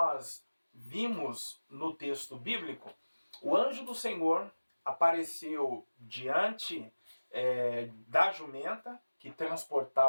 vimos no texto bíblico, o anjo do Senhor apareceu diante da jumenta que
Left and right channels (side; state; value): both; inverted; correlation -1.00